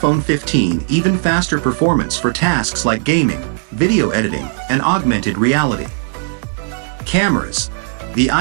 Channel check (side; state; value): left; silent; digital silence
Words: 15 even faster performance for tasks like gaming, video editing, and augmented reality. Cameras. The